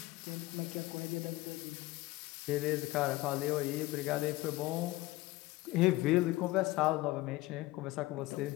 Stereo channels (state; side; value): quieter; right; 19.1 dB